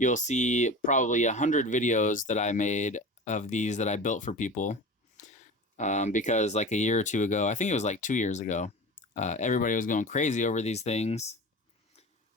see probably 100 videos that I made of these that I built for people. Because like a year or two ago, I think it was like 2 years ago, everybody was going crazy over these things.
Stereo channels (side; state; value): both; normal; correlation 0.33